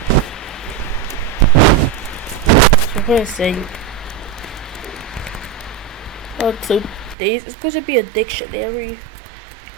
we're going to say, so days is going to be a dictionary.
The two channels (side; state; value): left; drops out; at 7.2 s